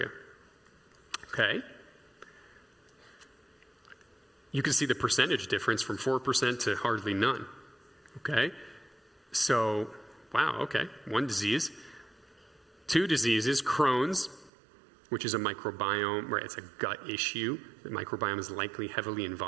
Okay. You can see the percentage difference from 4% to hardly none. Okay. So, wow, okay. One disease. Two diseases, Crohn's, which is a microbiome, right? It's a gut issue. The microbiome is likely heavily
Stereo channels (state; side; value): drops out; left; at 14.5 s